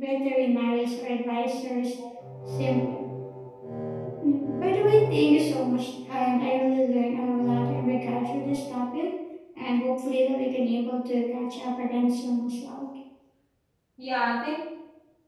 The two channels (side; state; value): both; identical; correlation 1.00